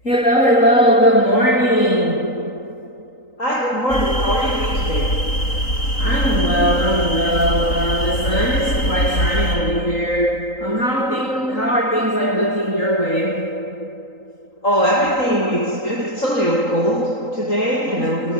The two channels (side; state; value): right; late; 3.9 ms